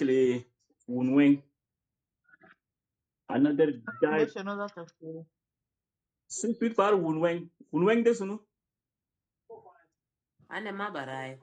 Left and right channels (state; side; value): identical; both; correlation 1.00